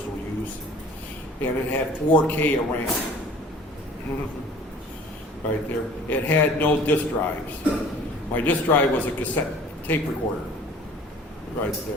use, and it had 4K of RAM. Right there. It had no disk drives. My disk drive was a cassette tape recorder. Right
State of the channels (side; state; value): both; normal; correlation 0.49